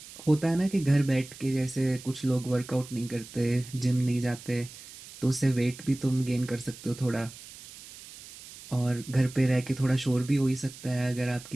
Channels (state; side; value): noise; right; hiss, 17 dB below the sound